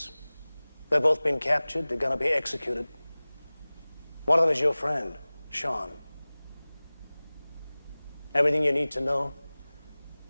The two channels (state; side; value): inverted; both; correlation -0.99